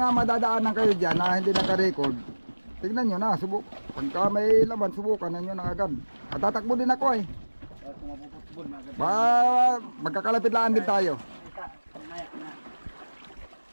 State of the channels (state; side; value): inverted; both; correlation -1.00